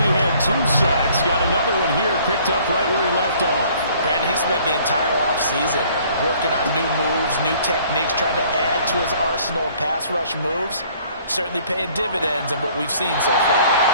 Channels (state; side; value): inverted; both; correlation -0.57